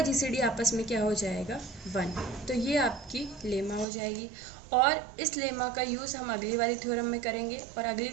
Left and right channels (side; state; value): left; drops out; at 3.9 s